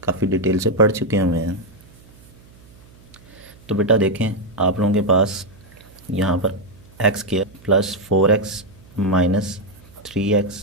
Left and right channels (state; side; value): noise; right; hum, 25 dB below the sound